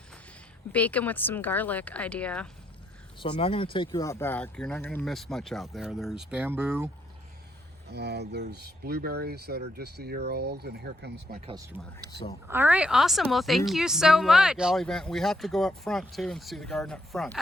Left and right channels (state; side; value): normal; both; correlation 0.76